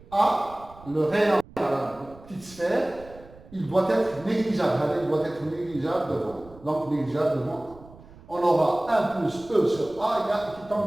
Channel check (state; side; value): noise; right; rumble, 22 dB below the sound